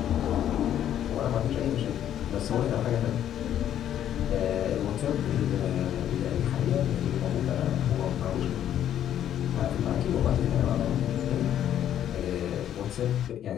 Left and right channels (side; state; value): right; quieter; 10.7 dB